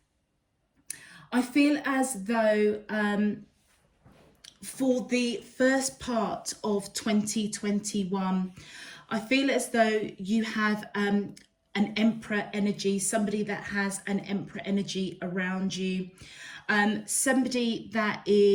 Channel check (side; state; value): both; identical; correlation 1.00